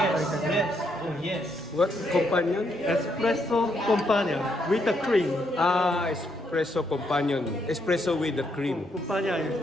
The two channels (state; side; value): normal; both; correlation 0.76